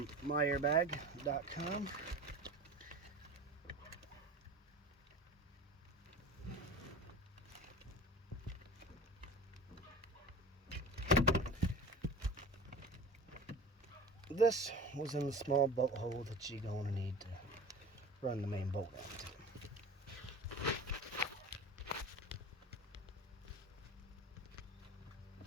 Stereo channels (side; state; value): both; normal; correlation 0.35